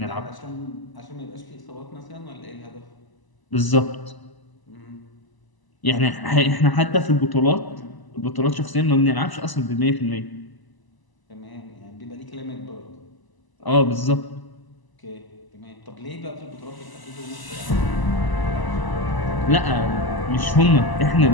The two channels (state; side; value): late; right; 1.0 ms